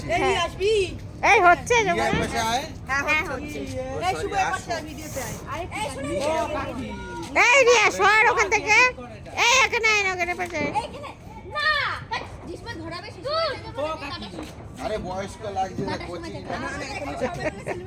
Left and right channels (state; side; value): identical; both; correlation 1.00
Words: এই হচ্ছে এই রিয়া সর ওখান থেকে, এই এখানে ওখানে পাশে। আরে বয়স্ক লাগছে না কোচি।